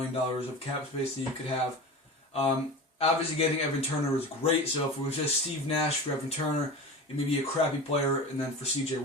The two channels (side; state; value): both; normal; correlation 0.31